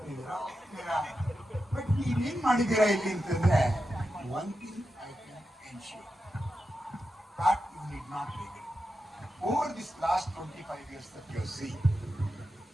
ಹೋಗ್ತೀರಾ, ಬಟ್ ನೀವೇನು ಮಾಡಿದ್ದೀರಾ ಇಲ್ಲಿ ಅಂತಂದರೆ, one thing I can ensure that you need not regret. Over this last 25 years that you have seen,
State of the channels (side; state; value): both; normal; correlation 0.89